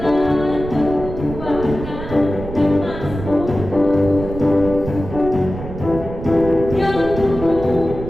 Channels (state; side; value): noise; right; rumble, 9 dB below the sound